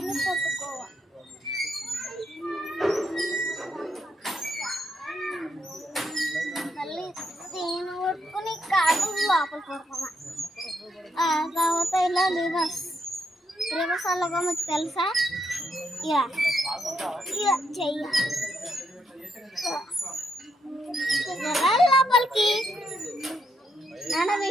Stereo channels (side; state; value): both; normal; correlation 0.78